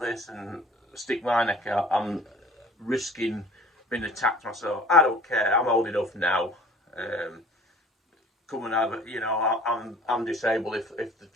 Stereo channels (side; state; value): both; normal; correlation 0.47